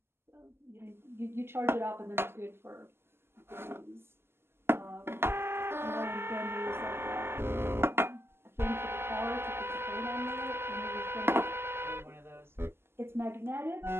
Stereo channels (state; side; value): late; left; 0.12 ms